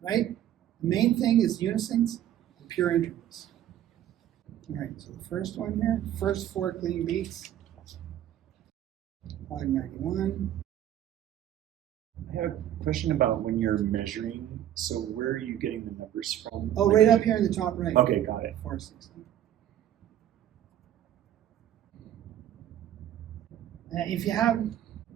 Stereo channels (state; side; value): quieter; left; 11.5 dB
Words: Right? The main thing is unisons and pure intervals. All right, so the first one here, first 4 clean beats. 591. I have a question about when you're measuring. So where are you getting the numbers from? Oh, right up here in the top right. Okay, got it. 460. If you have,